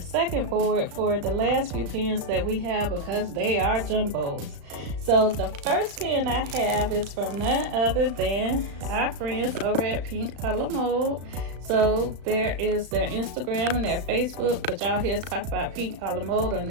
board for the last few pens that we have because they are jumbos. So the first pen I have is from none other than our friends over at Pink Color Mode. So there is their Instagram and their Facebook, but y'all hear us talk about Pink Color Mode on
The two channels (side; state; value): left; late; 35 ms